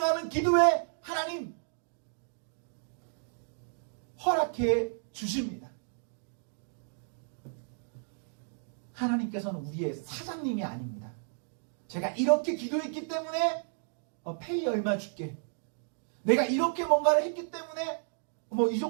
기도에 하나님 허락해 주십니다. 하나님께서는 우리의 사장님이 아닙니다. 제가 이렇게 기도했기 때문에 페이 얼마 줄게, 내가 이렇게 뭔가를 했기 때문에 이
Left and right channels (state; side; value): silent; left; digital silence